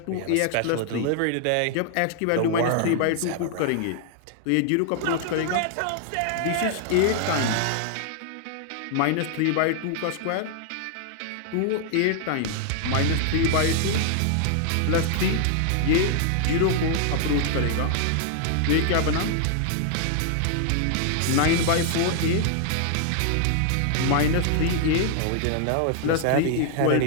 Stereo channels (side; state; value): both; different; correlation 0.00